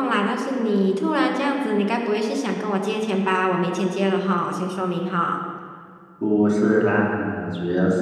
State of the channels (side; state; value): both; identical; correlation 1.00